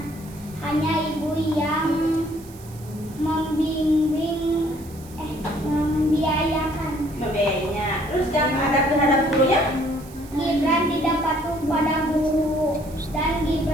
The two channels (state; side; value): noise; right; hiss, 22 dB below the sound